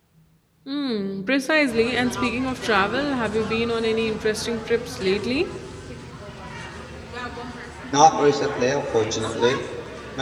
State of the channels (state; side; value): identical; both; correlation 1.00